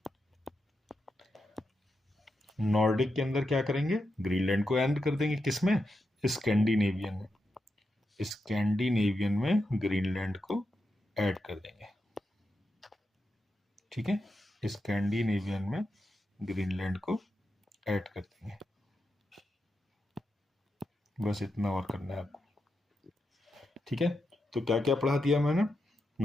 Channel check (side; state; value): both; normal; correlation 0.86